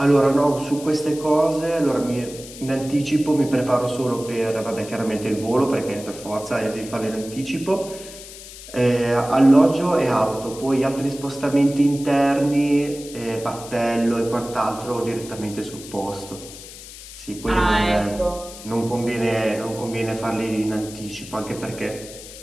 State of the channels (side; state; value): left; noise; hiss, 15 dB below the sound